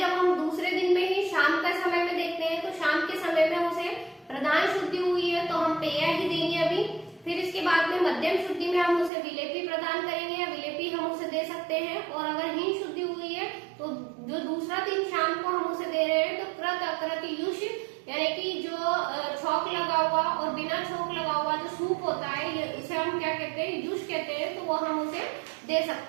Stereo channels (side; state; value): left; drops out; at 9.1 s